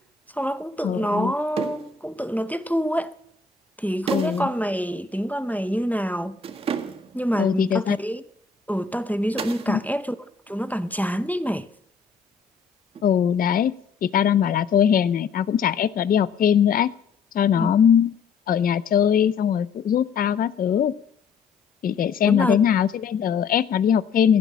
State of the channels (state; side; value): quieter; right; 5.8 dB